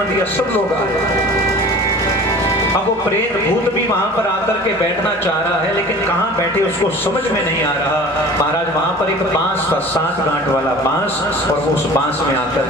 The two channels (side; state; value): both; normal; correlation 0.42